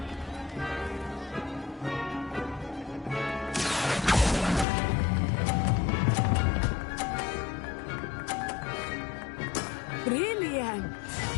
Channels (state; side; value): drops out; right; at 4.7 s